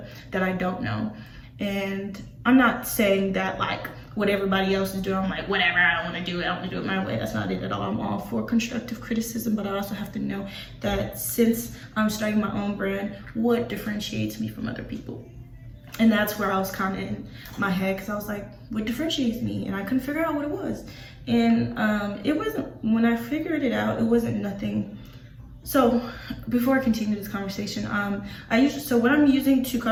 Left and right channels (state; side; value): identical; both; correlation 1.00